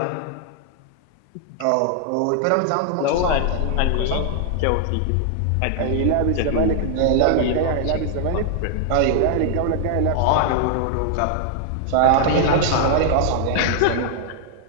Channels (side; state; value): both; different; correlation 0.00